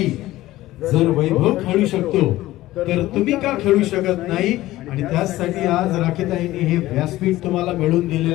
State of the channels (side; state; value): right; quieter; 16.3 dB